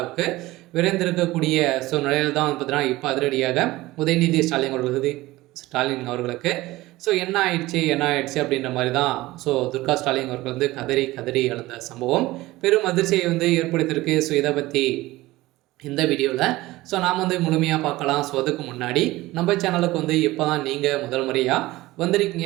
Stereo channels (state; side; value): quieter; left; 18.5 dB